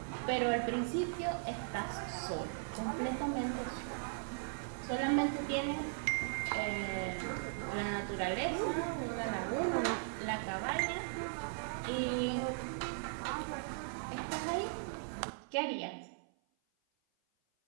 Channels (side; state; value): left; silent; 52 dB below the other